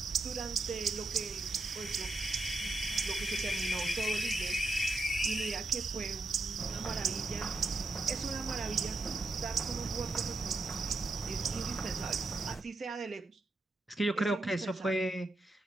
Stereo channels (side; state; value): left; quieter; 3.1 dB